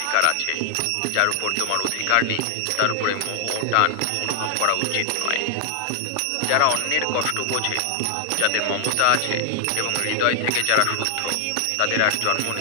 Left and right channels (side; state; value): both; different; correlation 0.00